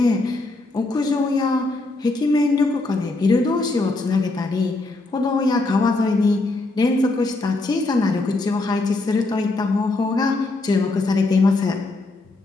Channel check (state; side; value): quieter; right; 3.1 dB